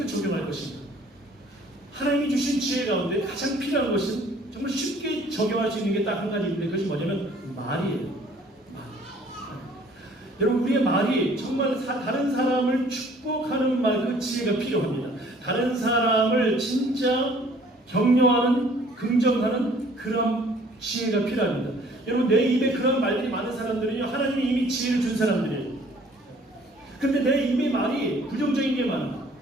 적용할 것인가. 하나님이 주신 지혜 가운데 가장 필요한 것은 정말 쉽게 적용할 수 있는 게 딱 한 가지 있는데, 그것이 뭐냐면 말이에요. 말. 여러분, 우리의 말이 정말 다른 사람을 축복하는 말, 그 지혜가 필요합니다. 다른 사람을 진짜 격려하는, 긍정하는 그런 지혜가 필요합니다. 여러분, 내 입에 그런 말들이 많은 사람들은요, 하나님이 이미 지혜를 준 사람들이에요. 근데 내 입의 말이 부정적인 게 많아.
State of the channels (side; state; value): both; normal; correlation 0.56